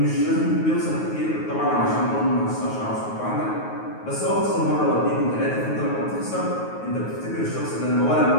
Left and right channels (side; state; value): right; late; 9.4 ms